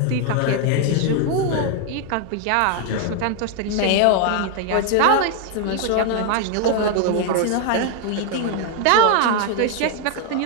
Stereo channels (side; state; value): both; different; correlation 0.00